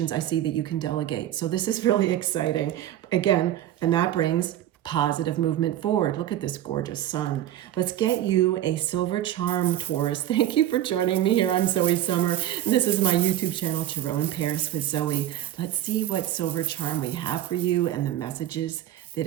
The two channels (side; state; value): left; quieter; 12.6 dB